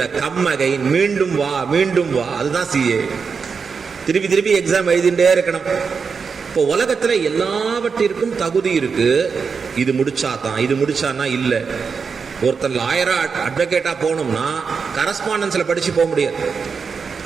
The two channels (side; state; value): left; quieter; 5.6 dB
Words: கம் அகைன், மீண்டும் வா மீண்டும் வா, அதுதான் சிஏ. திருப்பி திருப்பி எக்ஸாம் எழுதிட்டே இருக்கணும். இப்போ உலகத்துல எல்லாவற்றிற்கும் தகுதி இருக்கு. இது முடிச்சாதான், இது முடிச்சானா இல்ல. ஒருத்தர் லாயரா அட்வொகேட்டா போகணும்னா கரஸ்பாண்டன்ஸ்ல படிச்சு போக முடியாது,